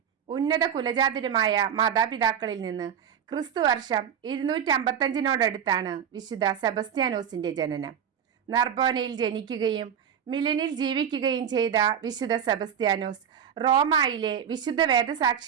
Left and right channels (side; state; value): left; quieter; 8.5 dB